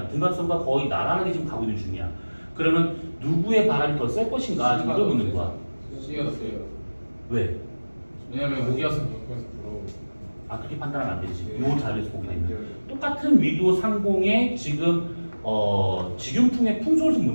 등각선과 거의 나란하게 지금 가고 있는 중이야. 그러면 누구의 바람이 더 셀 것인가? 이걸 묻는 거야. C가 더 세요. 왜? 왜냐면 여기가서 옆에서 들어오고. 아, 그렇게 판단하면 안 되지. 네. 요 자리에서 보게 되면. 똑같은 위도 상공에 지금 직윤풍의 풍속을 좀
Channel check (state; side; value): inverted; both; correlation -1.00